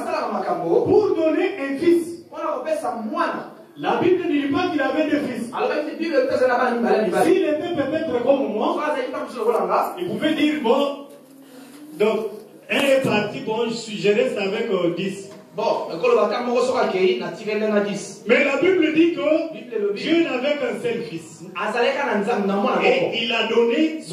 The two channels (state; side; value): identical; both; correlation 1.00